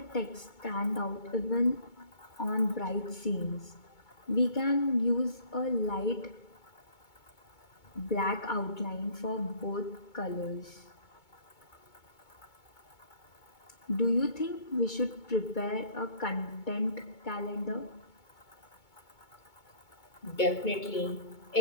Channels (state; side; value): late; right; 2.2 ms